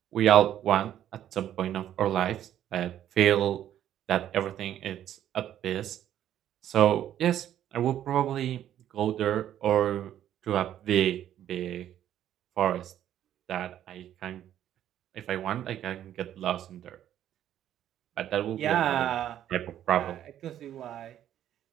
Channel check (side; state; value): left; quieter; 11.2 dB